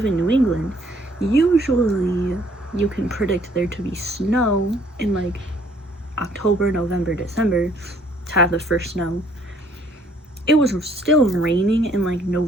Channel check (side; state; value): both; normal; correlation 0.62